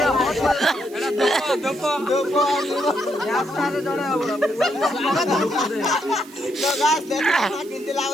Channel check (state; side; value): noise; right; hiss, 22 dB below the sound